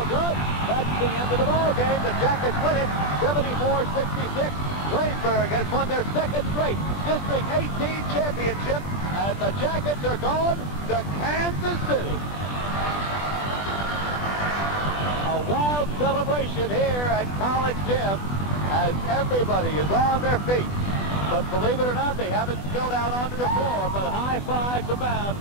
good. That's the end of the ball game. The Jackets win it, 74-66. Waynesburg has won their second straight District 18 championship, and the Jackets are going to Kansas City. A wild celebration here at College Gym as everybody is on their feet. But believe it or not, they haven't spilled out onto the floor, but high fives abound.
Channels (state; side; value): late; right; 20 ms